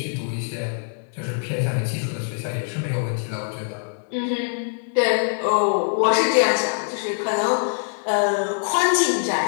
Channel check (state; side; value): silent; right; digital silence